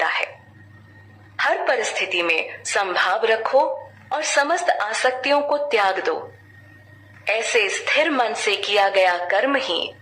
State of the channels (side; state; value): both; identical; correlation 1.00